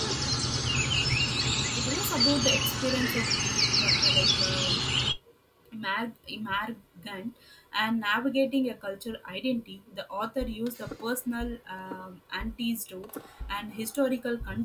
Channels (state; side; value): identical; both; correlation 1.00